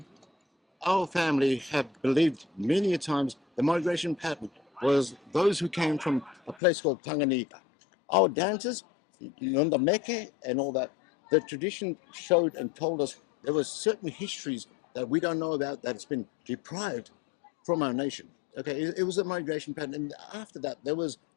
Our family have believed many a times the migration pattern was those who came from a place called Tanganyika. Our dances, Nunda Meke and all that, the tradition showed and told us there were certain histories that we don't know about that has been deprived from our nation. Okay, it was a migration pattern. And after that, there was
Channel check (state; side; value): drops out; right; at 6.6 s